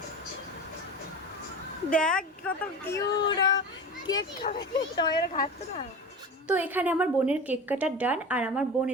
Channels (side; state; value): both; normal; correlation 0.31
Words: দেখ কত কিউট কেক খাবে, তোমার খাচ্ছে না। তো এখানে আমার বোনের কেক কাটার ডান। আর আমার বোন